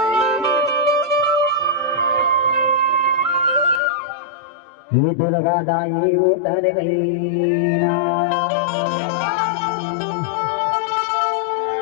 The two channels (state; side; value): drops out; right; at 3.8 s